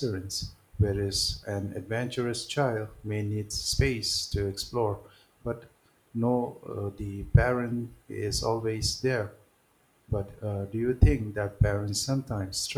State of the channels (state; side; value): identical; both; correlation 1.00